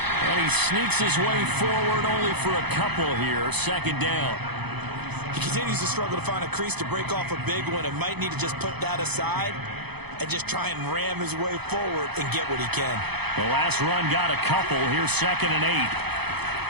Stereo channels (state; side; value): late; left; 0.98 ms